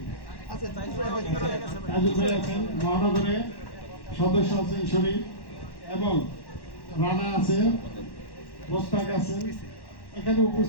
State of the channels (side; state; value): right; late; 1.1 ms